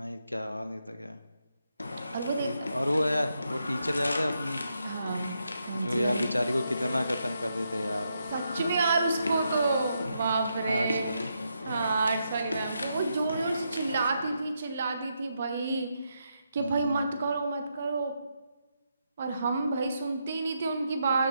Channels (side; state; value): both; inverted; correlation -0.82